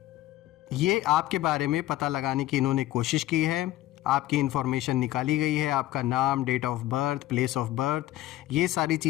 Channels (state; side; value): quieter; right; 15.0 dB